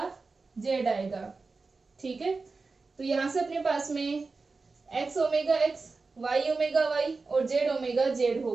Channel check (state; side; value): quieter; left; 4.0 dB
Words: जेड आएगा। ठीक है, तो यहां से अपने पास में X omega X, Y omega Y और जेड ओमेगा जेड